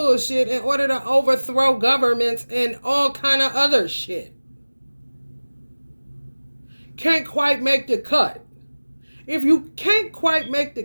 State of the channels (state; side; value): inverted; both; correlation -1.00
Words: in order to overthrow governments and all kind of other shit. Can't quite make the cut. If you can't quite make